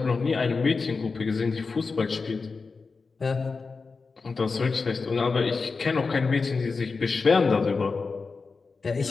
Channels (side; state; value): right; quieter; 4.5 dB